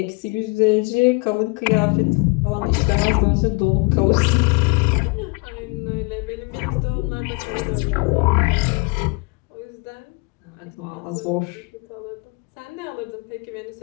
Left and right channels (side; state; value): right; quieter; 28.3 dB